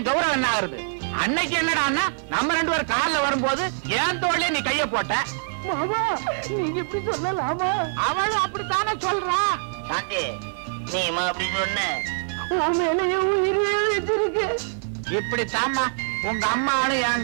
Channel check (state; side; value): silent; left; digital silence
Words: கௌரவம் என்ன ஆகுறது? அன்னைக்கு என்னடான்னா நம்ம 2 பேரும் கார்ல வரும்போது என் தோள்லயே நீ கைய போட்ட. மாமா நீங்க இப்படி சொல்லலாமா? அவளும் அப்படித்தானே சொல்றா. சாந்தி, நீ அப்படி சொன்ன இப்படித்தாம்மா உங்க அம்மாவும்